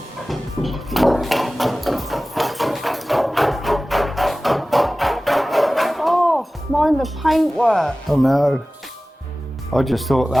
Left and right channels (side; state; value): both; normal; correlation 0.97